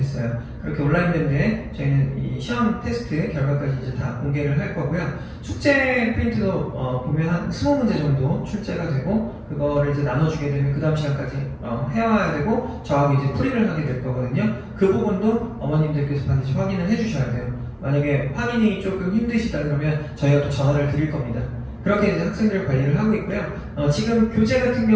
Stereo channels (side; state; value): both; identical; correlation 1.00